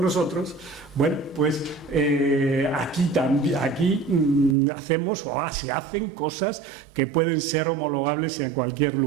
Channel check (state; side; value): drops out; left; at 4.5 s